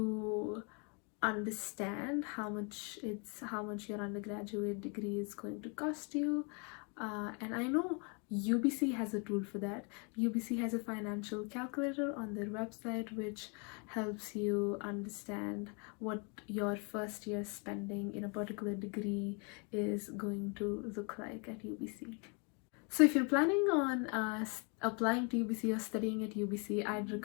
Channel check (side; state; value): right; quieter; 34.9 dB